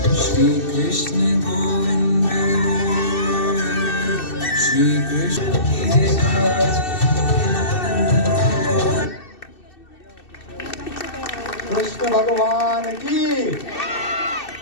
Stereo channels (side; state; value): right; late; 2.6 ms